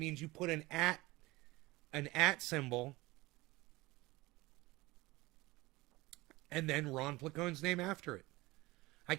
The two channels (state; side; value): quieter; left; 20.7 dB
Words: you put an @ symbol and then Ron Placone's name after it. I